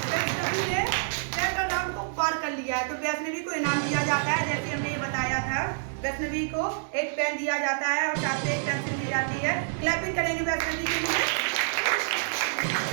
वैष्णवी ने सेकंड राउंड को पार कर लिया है, तो वैष्णवी को इनाम दिया जाता है। जैसे हमने ये बताया था, वैष्णवी को एक पेन दिया जाता है और साथ में एक पेंसिल दी जाती है। क्लैपिंग करेंगे वैष्णवी के लिए।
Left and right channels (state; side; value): silent; left; 60 dB below the other